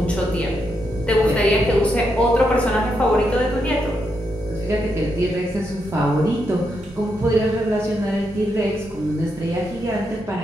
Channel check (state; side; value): normal; both; correlation 0.81